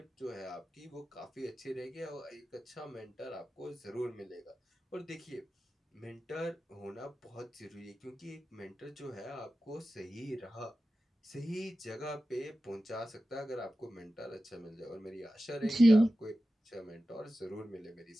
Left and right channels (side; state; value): both; normal; correlation 0.94